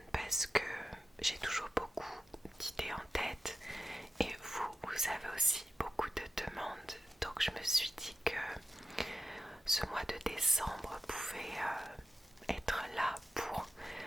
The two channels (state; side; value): normal; both; correlation 0.90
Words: parce que j'ai toujours beaucoup d'idées en tête et vous avez aussi beaucoup de demandes. Donc je me suis dit que ce mois de décembre pouvait être là pour